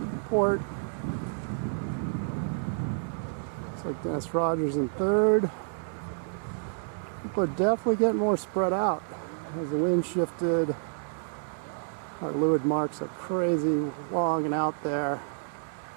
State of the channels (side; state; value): left; silent; digital silence